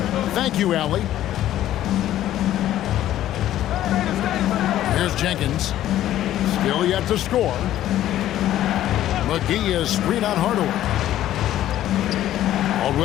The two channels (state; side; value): quieter; right; 12.8 dB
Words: Thank you, Allie. Here's Jenkins. Still yet to score. McGee is screen on Hardaway.